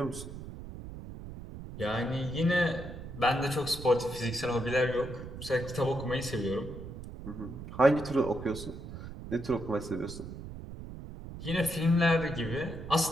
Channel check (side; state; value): right; noise; rumble, 11 dB below the sound